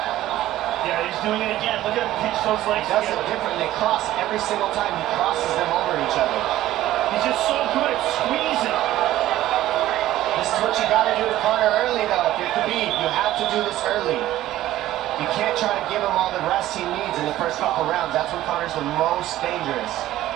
He's doing it again. Look at him pinch those legs. He does it different. They cross every single time. He crosses them over each other. He's just so good at squeezing. This is what you got to do to Conor early, though. If you're Khabib, you have to do this early. You can't try to give him all the rest he needs in the first couple rounds. That's when Conor's the most dangerous.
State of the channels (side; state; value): left; quieter; 14.4 dB